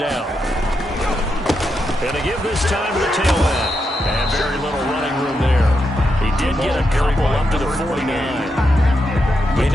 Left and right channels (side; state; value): both; normal; correlation 0.84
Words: And to give this time to the tailback. And very little running room there. He did get a couple up to the 49. You